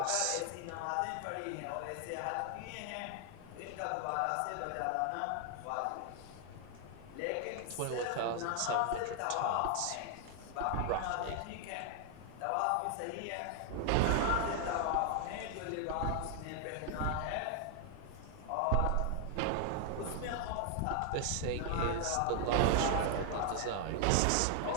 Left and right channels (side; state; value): both; different; correlation 0.00